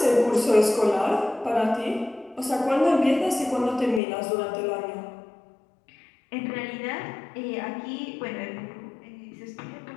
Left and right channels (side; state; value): right; drops out; at 4.0 s